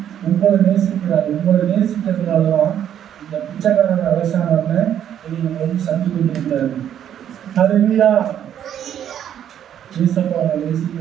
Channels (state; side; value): quieter; left; 9.9 dB